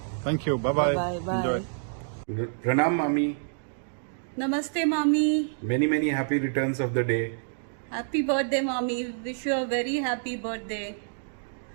Thank you, bye bye bye. प्रणाम मामी। नमस्ते मामी। Many many happy returns of the day. Happy birthday मामी, wish you a very happy birthday.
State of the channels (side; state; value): left; silent; digital silence